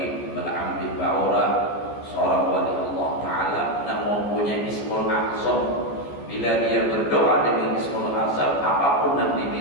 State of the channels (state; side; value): late; right; 14 ms